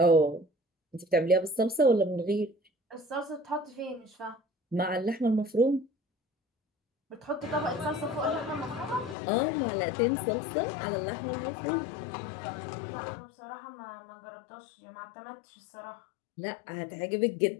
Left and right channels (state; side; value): drops out; right; at 9.2 s